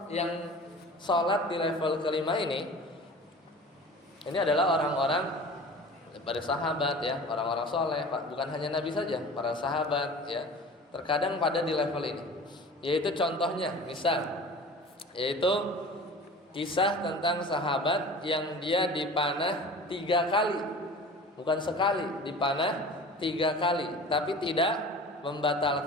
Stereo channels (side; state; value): both; normal; correlation 0.40